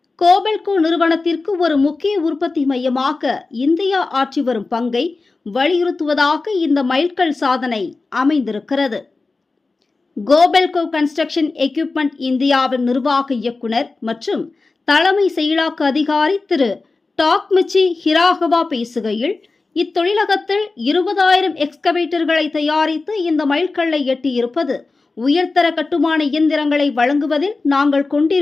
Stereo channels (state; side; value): quieter; right; 3.7 dB